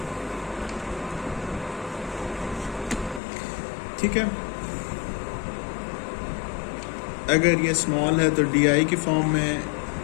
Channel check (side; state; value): right; drops out; at 3.2 s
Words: ठीक है। अगर ये स्मॉल है तो डी आई की फॉर्म में